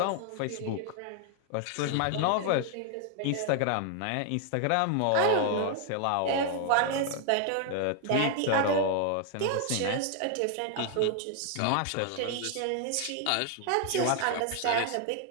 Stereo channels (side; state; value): both; different; correlation 0.00